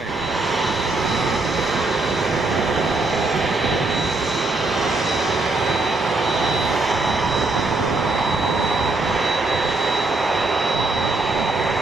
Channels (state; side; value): quieter; left; 3.1 dB